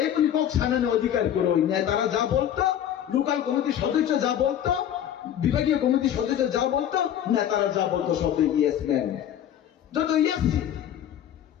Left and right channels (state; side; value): quieter; right; 10.3 dB